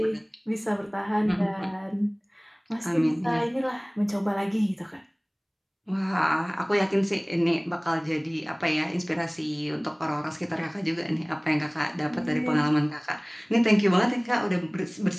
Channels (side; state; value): both; identical; correlation 1.00